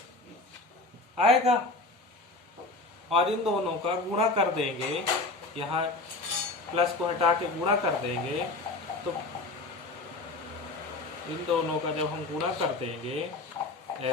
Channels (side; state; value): right; quieter; 3.3 dB